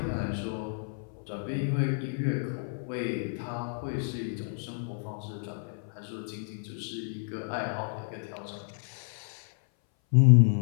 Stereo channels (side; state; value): right; silent; 57 dB below the other